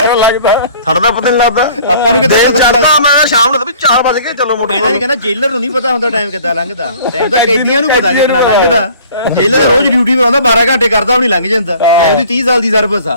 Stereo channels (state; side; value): inverted; both; correlation -0.50